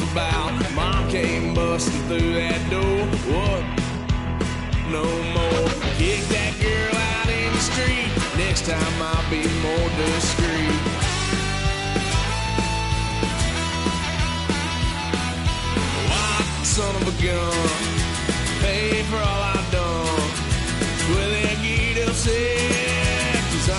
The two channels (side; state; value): both; identical; correlation 1.00